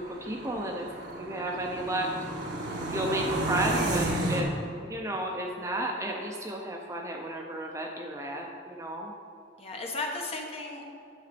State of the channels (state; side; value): normal; both; correlation 0.33